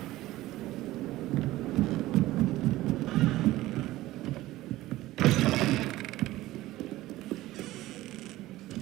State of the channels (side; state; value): left; quieter; 16.8 dB